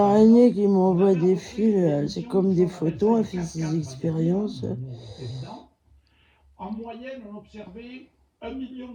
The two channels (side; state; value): both; identical; correlation 1.00